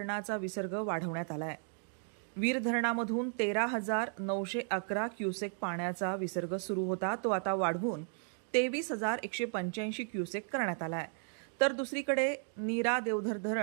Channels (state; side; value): silent; left; 55 dB below the other